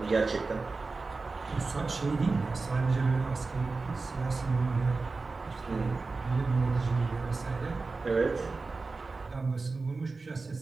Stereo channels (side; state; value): left; quieter; 3.9 dB